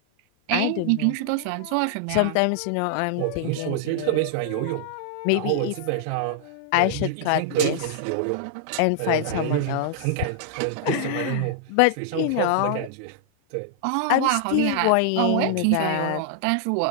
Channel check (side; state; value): both; different; correlation -0.01